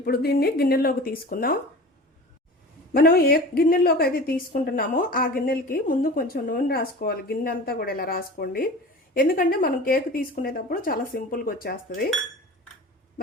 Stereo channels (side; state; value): both; normal; correlation 0.36